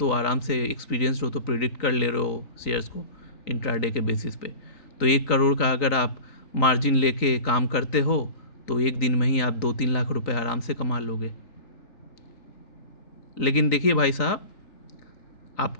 आराम से एक्सपीरियंस्ड हो, तो प्रिडिक्ट कर ले रहे हो शेयर्स को इंट्राडे के बेसिस पे। तो 1 करोड़ का अगर आप मार्जिन लेके काम करते हो तो एक दिन में ही आप 2-3 लाख रुपए आराम से कमा लोगे। लेकिन देखिए भाई साहब,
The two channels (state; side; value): late; right; 3.9 ms